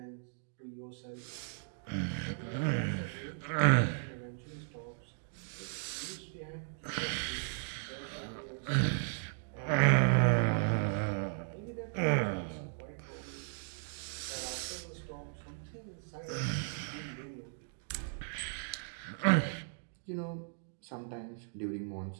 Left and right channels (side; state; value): left; silent; digital silence